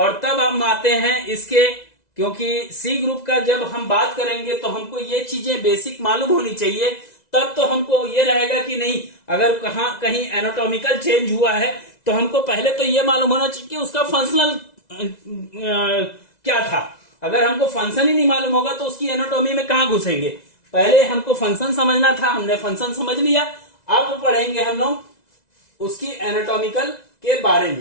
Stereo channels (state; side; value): late; right; 2.0 ms